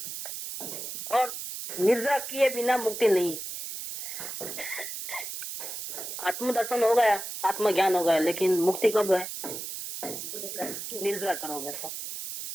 और निद्रा किए बिना मुक्ति नहीं। आत्मदर्शन हो गया, आत्मज्ञान हो गया, लेकिन मुक्ति कब है? निद्रा करोगे तो।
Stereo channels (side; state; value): right; noise; hiss, 7 dB below the sound